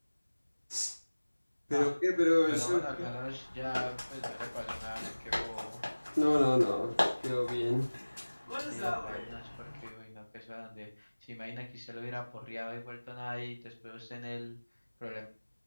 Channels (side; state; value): both; inverted; correlation -1.00